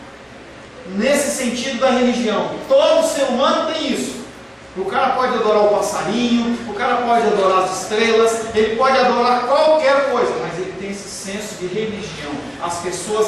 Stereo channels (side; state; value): both; identical; correlation 1.00